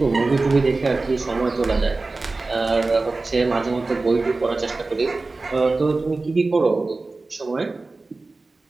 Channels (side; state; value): left; quieter; 3.5 dB